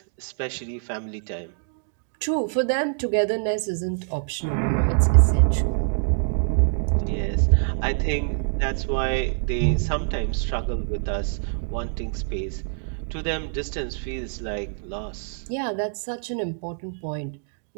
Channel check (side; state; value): left; silent; digital silence